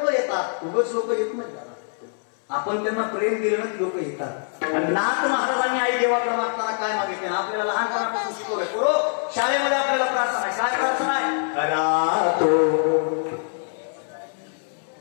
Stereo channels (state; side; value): silent; right; 63 dB below the other